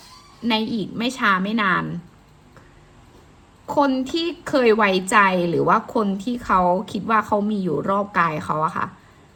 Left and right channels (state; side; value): identical; both; correlation 1.00